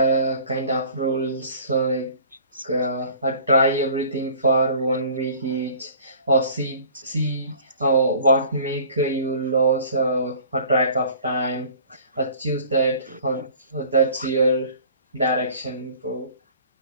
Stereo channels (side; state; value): both; inverted; correlation -0.49